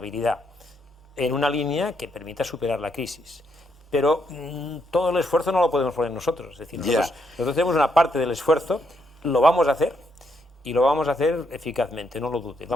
en una línea que permita superar la crisis. Pero todo el esfuerzo no lo podemos poner nosotros, es decir, nosotros tenemos una parte del esfuerzo, lo vamos a hacer, y lo vamos a hacer eficazmente, no lo dude.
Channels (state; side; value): normal; both; correlation 0.77